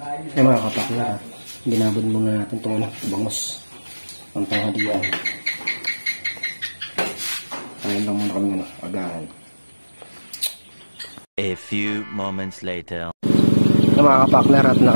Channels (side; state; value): both; inverted; correlation -1.00